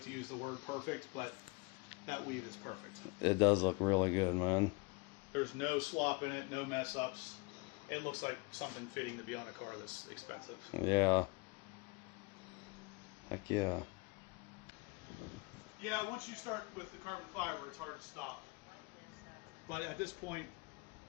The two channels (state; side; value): quieter; right; 27.2 dB